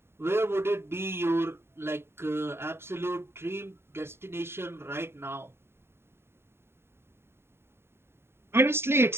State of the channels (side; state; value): left; late; 0.12 ms